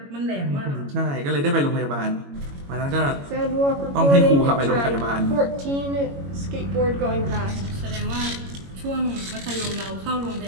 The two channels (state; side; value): late; left; 21 ms